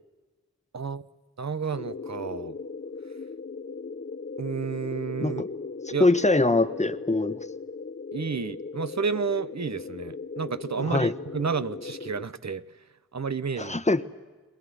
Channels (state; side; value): normal; both; correlation 0.42